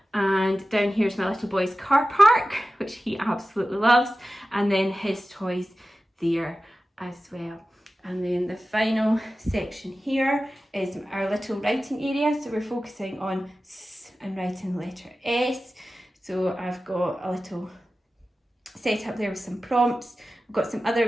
And down here is my little boy's car park, which he absolutely loves, and then his toys there as well. And then the final section here is our little writing area. So we're focusing on S and writing the letter S. So I've got a little set up there with some prompts. We've got some other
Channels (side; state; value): both; normal; correlation 0.95